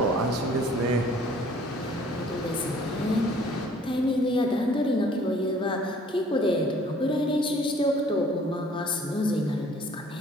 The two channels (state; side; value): normal; both; correlation 0.55